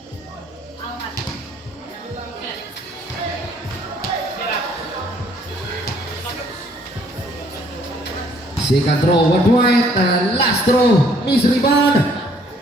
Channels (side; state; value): both; normal; correlation 0.62